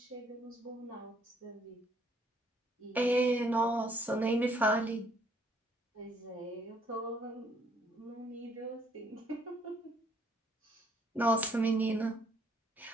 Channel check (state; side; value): normal; both; correlation 0.66